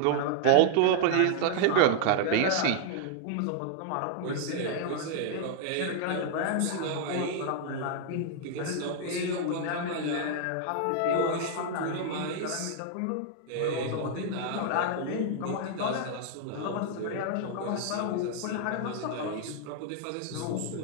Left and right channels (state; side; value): different; both; correlation -0.01